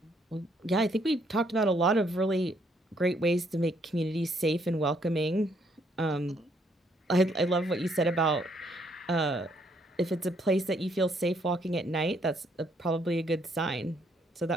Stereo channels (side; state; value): both; normal; correlation 0.70